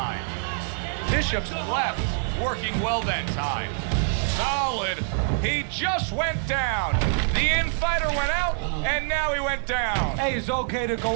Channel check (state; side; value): silent; left; digital silence